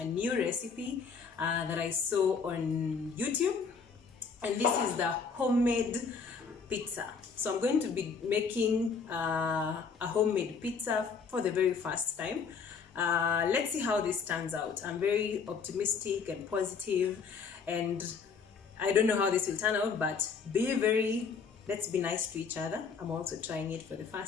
new recipe that I saw on YouTube. And this is the homemade pizza. So I'm going to be making a homemade pizza for the very first time. Let's see how this turns out. I'm very optimistic and positive, and I don't know how this will turn out, but let's be nice to each other. I'm also trying it for the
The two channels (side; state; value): right; quieter; 5.6 dB